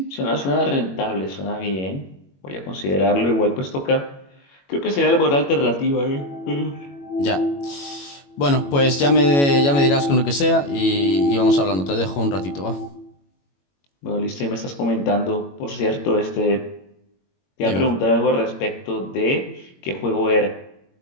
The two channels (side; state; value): right; late; 21 ms